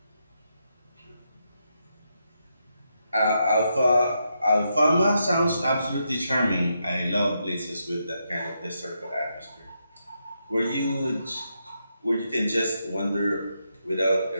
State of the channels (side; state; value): both; inverted; correlation -0.82